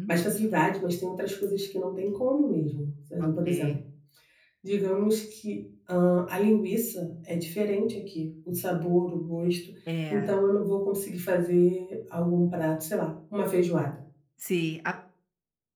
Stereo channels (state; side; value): identical; both; correlation 1.00